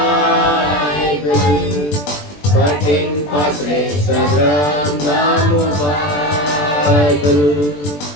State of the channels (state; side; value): late; right; 20 ms